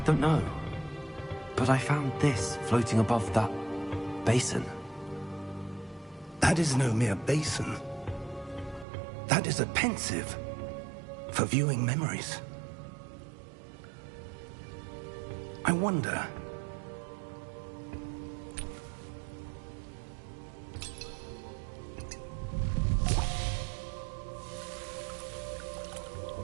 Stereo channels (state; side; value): drops out; left; at 8.8 s